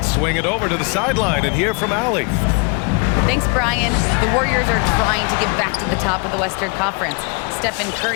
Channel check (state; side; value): quieter; right; 33.7 dB